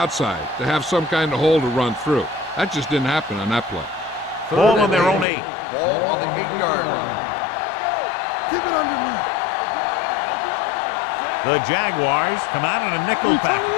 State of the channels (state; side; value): drops out; right; at 5.2 s